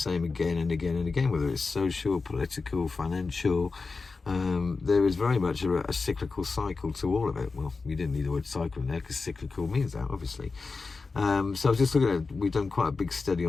again and again and again, whether it's social, political, financial, there is very much a cyclical cycle to all of it. Well, we didn't need the word cycle in there because cyclical means that, obviously. So I was just looking at, we've done quite a big study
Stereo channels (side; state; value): right; quieter; 4.2 dB